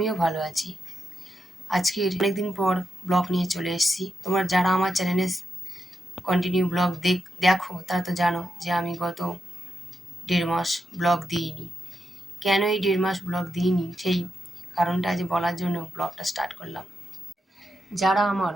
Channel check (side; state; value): both; normal; correlation 0.85